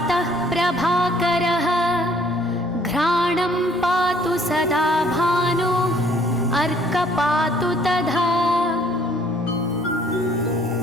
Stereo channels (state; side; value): normal; both; correlation 0.60